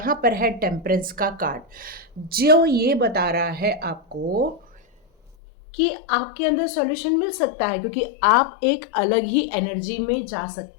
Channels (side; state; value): right; drops out; at 5.4 s